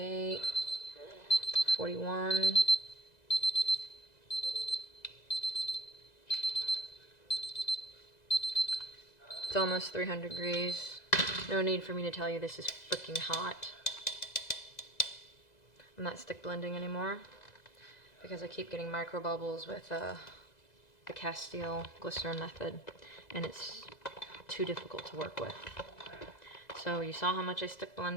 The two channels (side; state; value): right; late; 2.0 ms